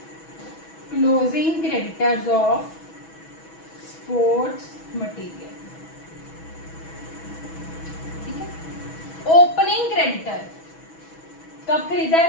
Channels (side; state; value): right; late; 6.2 ms